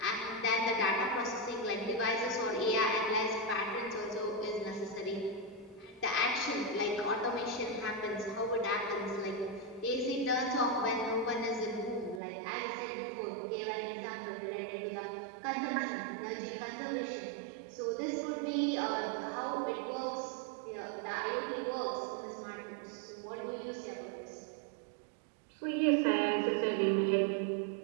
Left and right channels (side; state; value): left; drops out; at 12.2 s